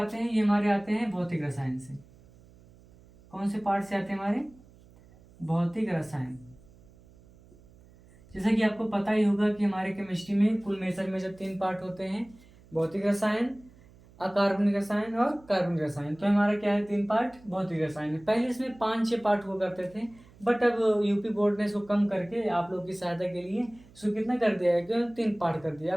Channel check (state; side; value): noise; right; hum, 25 dB below the sound